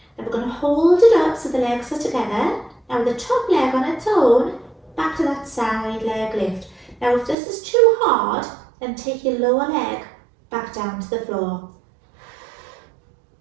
Now we're going to hold it up so the legs are together. Now the top leg on its own, back to that side leg lift. Now if this is too hard, then take your lower leg back down to the floor.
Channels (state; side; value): drops out; left; at 7.4 s